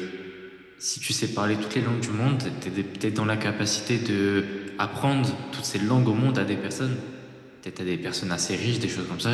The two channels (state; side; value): identical; both; correlation 1.00